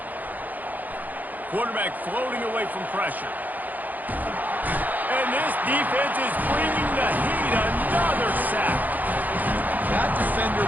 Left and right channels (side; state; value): left; late; 0.083 ms